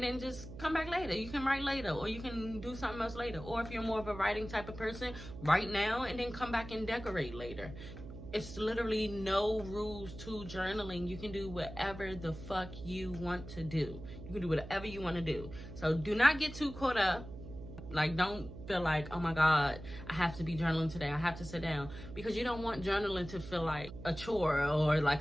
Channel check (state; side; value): noise; right; hum, 12 dB below the sound